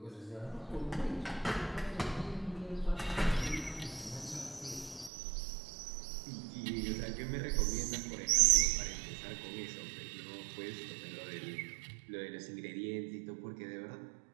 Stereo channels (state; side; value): drops out; left; at 5.1 s